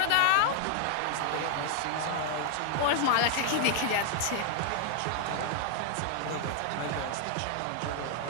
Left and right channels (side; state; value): both; different; correlation 0.00